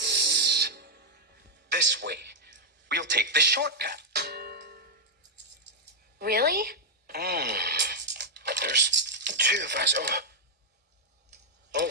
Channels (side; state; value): both; normal; correlation -0.03